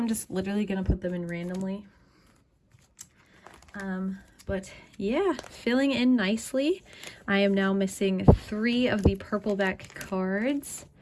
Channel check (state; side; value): identical; both; correlation 1.00